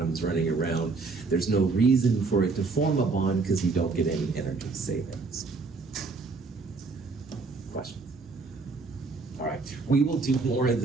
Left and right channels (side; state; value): left; quieter; 4.1 dB